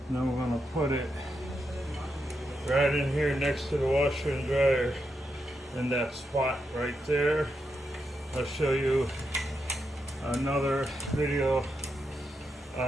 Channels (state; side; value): normal; both; correlation 0.84